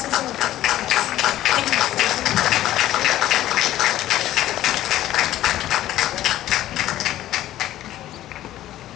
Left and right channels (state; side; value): quieter; right; 13.8 dB